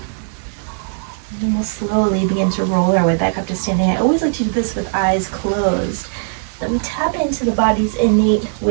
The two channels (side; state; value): left; silent; digital silence